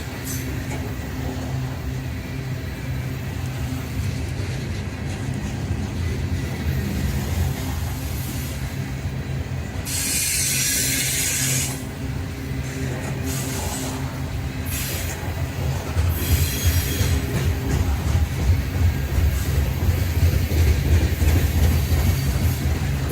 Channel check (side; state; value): both; identical; correlation 1.00